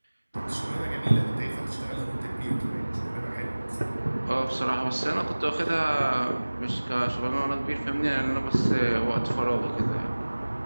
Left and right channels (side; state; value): both; inverted; correlation -1.00